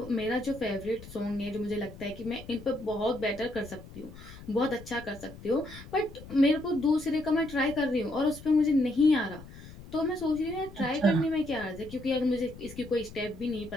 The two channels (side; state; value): left; noise; rumble, 16 dB below the sound